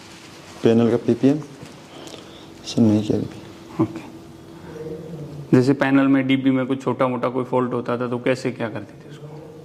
पैनल का PPM सर नहीं किया कभी। ओके। जैसे पैनल में DB में कुछ छोटा मोटा कोई फॉल्ट होता था तो कैसे क्या करते थे उसको?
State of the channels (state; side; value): identical; both; correlation 1.00